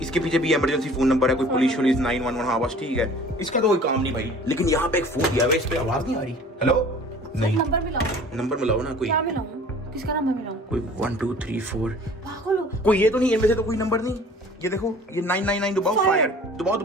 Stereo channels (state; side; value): normal; both; correlation 0.47